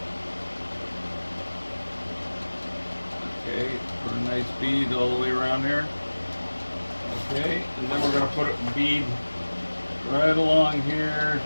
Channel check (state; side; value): inverted; both; correlation -1.00